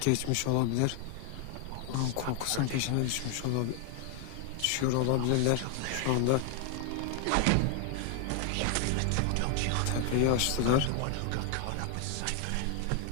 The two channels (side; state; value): both; different; correlation 0.00